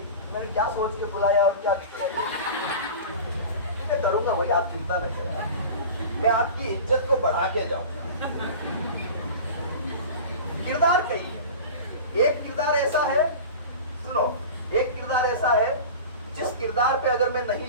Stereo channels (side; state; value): both; inverted; correlation -0.34